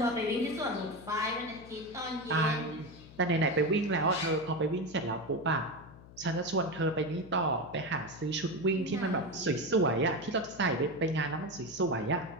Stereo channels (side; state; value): left; noise; hum, 19 dB below the sound